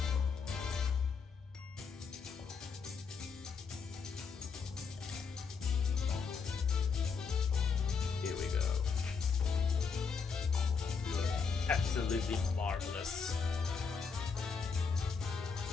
Here we go. Absolutely marvelous.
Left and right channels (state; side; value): quieter; right; 5.5 dB